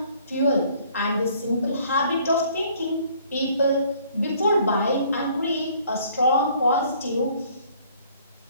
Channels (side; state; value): both; inverted; correlation -0.59